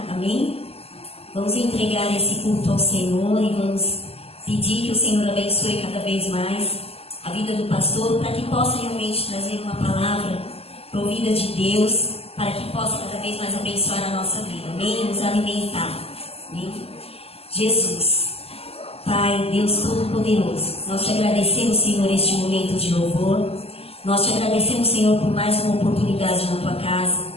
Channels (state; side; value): late; right; 0.29 ms